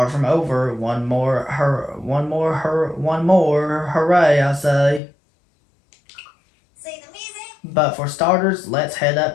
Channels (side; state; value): right; drops out; at 5.0 s